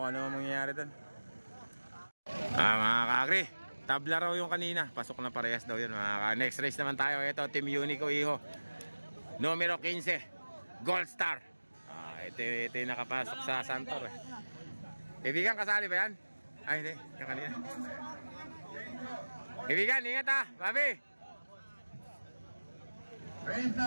ano mangyayari doon. Mga kakri, tabla raw yung kanina. Pasok na parehas daw yun. Next race naman tayo. Ito, Team Unico Iho. Numero 15, Gold Star. Ito yung nakapasok sa Santor. Ibigan, kasali ba yan? Ay, hindi. Yung kanina. Ibigan, ingat ha. Babi. Race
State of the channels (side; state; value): both; inverted; correlation -1.00